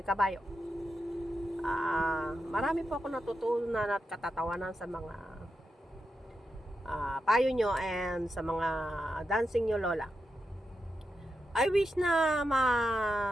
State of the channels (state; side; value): normal; both; correlation 0.88